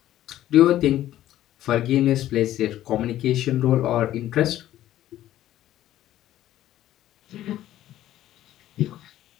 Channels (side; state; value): right; quieter; 13.3 dB